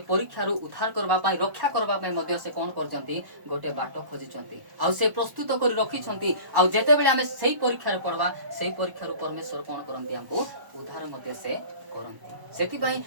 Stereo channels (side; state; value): left; late; 1.0 ms